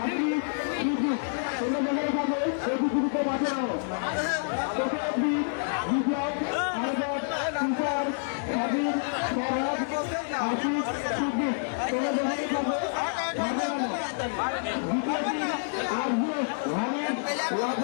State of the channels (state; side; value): silent; right; 58 dB below the other